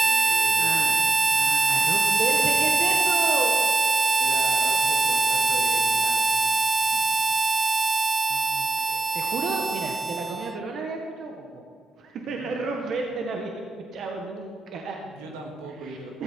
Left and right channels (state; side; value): quieter; left; 3.2 dB